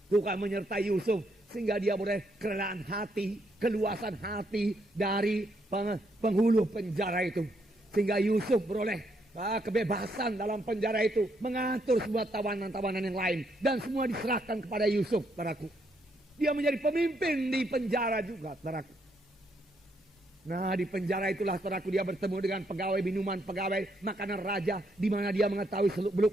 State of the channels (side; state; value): both; normal; correlation 0.75